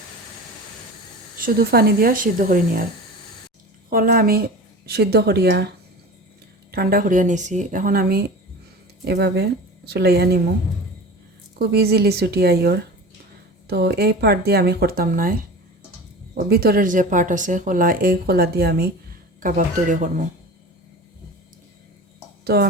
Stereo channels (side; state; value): both; normal; correlation 0.34